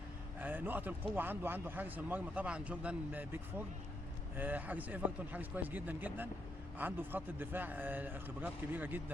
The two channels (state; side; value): normal; both; correlation 0.78